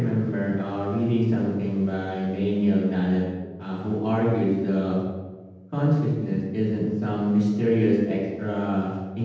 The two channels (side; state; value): both; identical; correlation 1.00